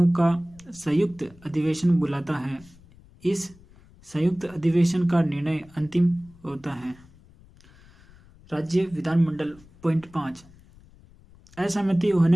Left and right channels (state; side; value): noise; left; rumble, 25 dB below the sound